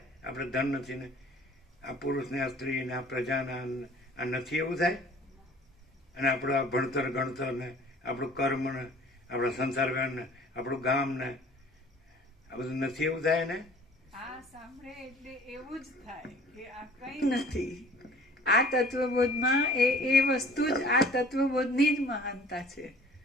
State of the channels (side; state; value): both; normal; correlation 0.49